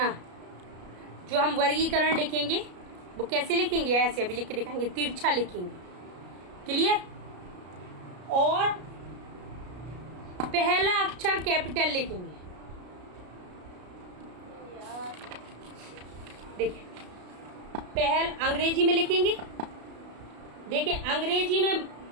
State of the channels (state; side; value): late; left; 33 ms